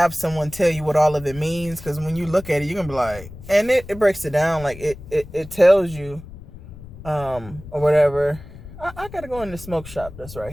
someone tell you what all of it means, because when you look at it, you're gonna be like, and it breaks it down, like it tells you, or whatever. I gotta go in the smoke shop that's right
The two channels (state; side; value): noise; left; rumble, 16 dB below the sound